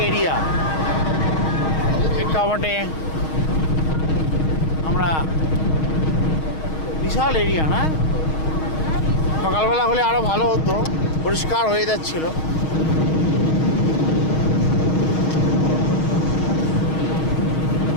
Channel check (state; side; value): late; right; 6.4 ms